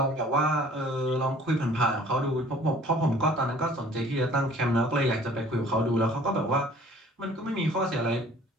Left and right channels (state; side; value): normal; both; correlation 0.52